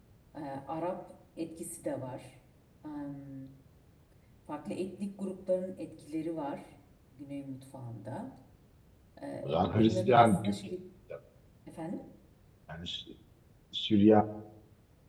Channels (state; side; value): identical; both; correlation 1.00